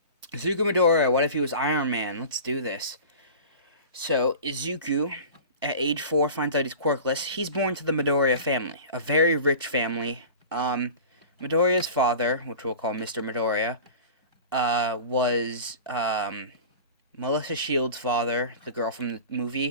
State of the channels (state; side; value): inverted; both; correlation -0.36